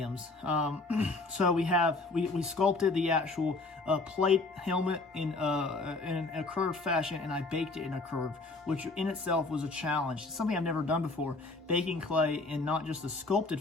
So we sculpted the actual plate helmet in a curved fashion, and I baked it in a curve, which in itself was a challenge. It's something I've never done before, baking clay in not just a sculpted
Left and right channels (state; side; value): quieter; right; 3.4 dB